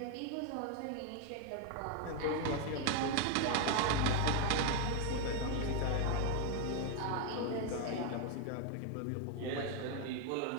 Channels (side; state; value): both; different; correlation 0.01